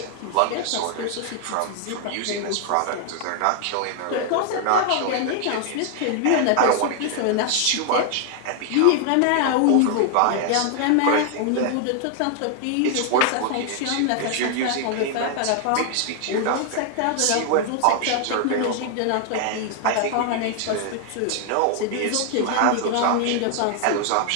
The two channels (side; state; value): both; different; correlation 0.00